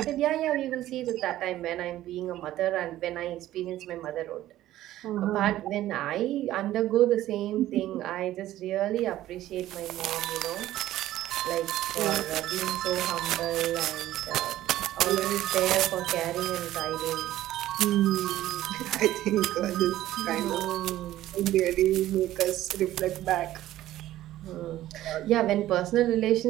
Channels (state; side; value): quieter; left; 14.2 dB